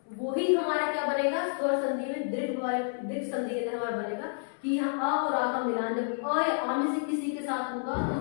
वही हमारा क्या बनेगा? स्वर संधि में दीर्घ संधि के अंदर हमारा बनेगा कि हम अ और आ का मिलान जब अ या आ में से किसी के साथ होगा तो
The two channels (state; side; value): silent; right; 58 dB below the other